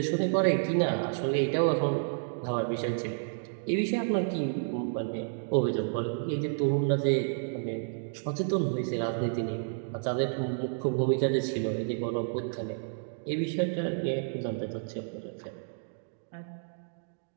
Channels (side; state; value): left; silent; digital silence